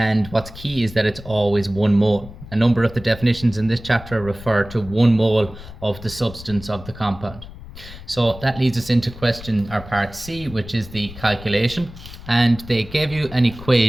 what's key is that it's always 1 mole. A number of the definitions in this chapter refer to 1 mole of the substance of the compound. So that leads us into question or part C, which is the calculation. And they gave you an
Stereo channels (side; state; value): left; noise; rumble, 15 dB below the sound